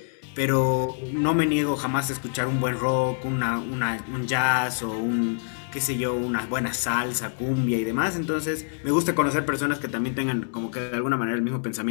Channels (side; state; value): right; silent; digital silence